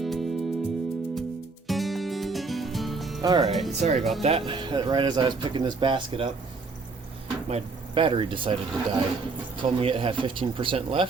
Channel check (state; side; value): quieter; left; 4.1 dB